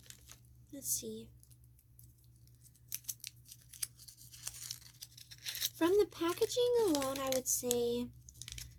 Let's see. From the packaging alone, I would say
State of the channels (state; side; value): identical; both; correlation 1.00